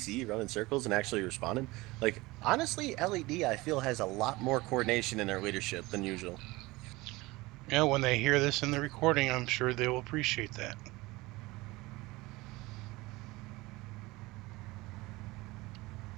running circles and actually responding. Like, honestly, LED, I feel, has a lot more coordination in their leadership than usual. Yeah, when they hear this in the recording, I'm sure they will appreciate that.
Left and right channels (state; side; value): quieter; left; 21.3 dB